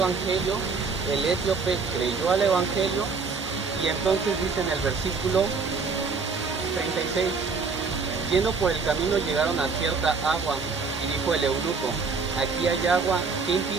el etíope creyó al evangelio, y entonces dice en el versículo 36: yendo por el camino llegaron a cierta agua, y dijo el eunuco: aquí hay agua, ¿qué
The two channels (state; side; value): quieter; left; 4.8 dB